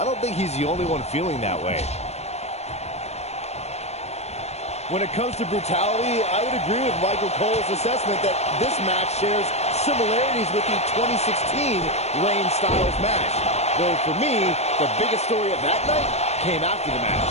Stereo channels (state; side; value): late; right; 0.31 ms